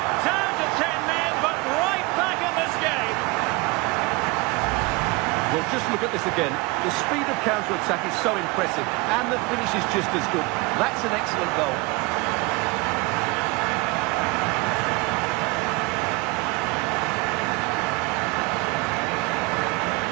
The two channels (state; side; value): quieter; left; 25.3 dB